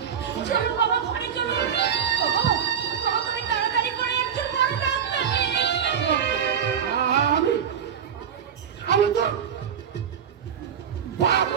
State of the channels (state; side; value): quieter; left; 8.0 dB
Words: চলো বাবা, ঘরে চলো। বাবা, বাবা, তুমি তাড়াতাড়ি করে একজন বড় ডাক্তার নিয়ে এসো। আমি তো বাপ